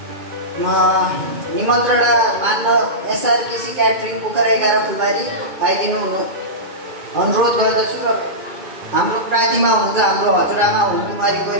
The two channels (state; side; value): late; left; 2.2 ms